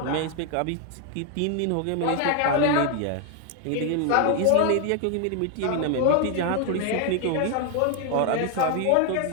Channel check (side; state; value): both; different; correlation 0.00